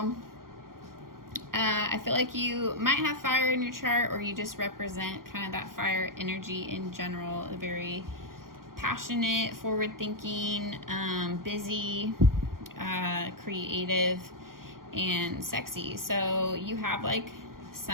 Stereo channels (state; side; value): late; left; 0.91 ms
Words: I feel like you might have fire in your chart, or you just represent kind of that fire energy in general. A very passionate, forward-thinking, busy, creative, and sexy. So you have like